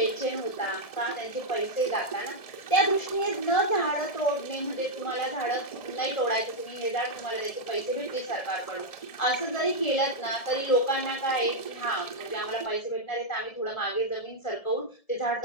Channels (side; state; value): right; late; 1.7 ms